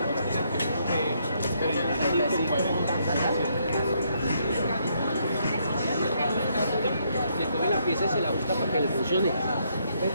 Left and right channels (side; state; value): both; inverted; correlation -0.73